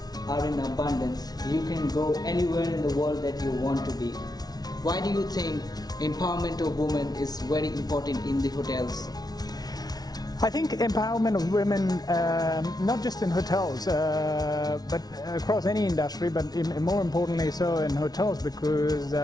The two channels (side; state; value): right; late; 0.19 ms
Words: are in abundance. You can go anywhere in the world that you want to be. Why do you think empowerment of women is very important in the hotels? I think empowerment of women, not just in hotels, but across any industry, but more importantly so in hotels, because